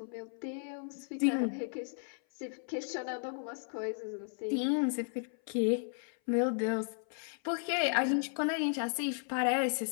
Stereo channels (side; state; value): right; silent; 55 dB below the other